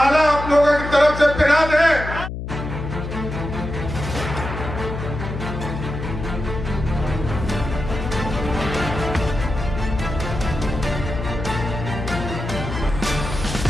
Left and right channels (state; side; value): noise; left; hum, 6 dB below the sound